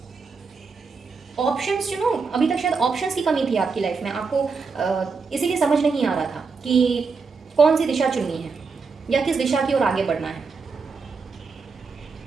ऑप्शंस, अभी तक शायद ऑप्शंस की कमी थी आपकी लाइफ में, आपको इसीलिए समझ नहीं आ रहा था कि कौन सी दिशा चुननी है या किस दिशा की ओर आगे बढ़ना है।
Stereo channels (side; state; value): left; quieter; 4.8 dB